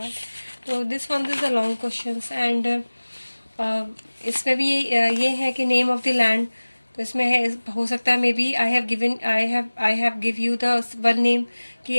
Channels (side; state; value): both; inverted; correlation -1.00